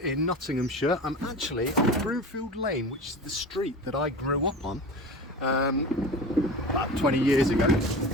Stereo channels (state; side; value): normal; both; correlation 0.32